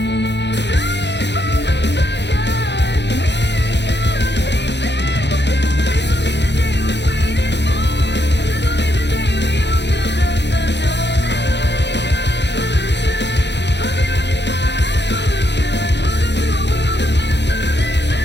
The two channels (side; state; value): right; late; 0.51 ms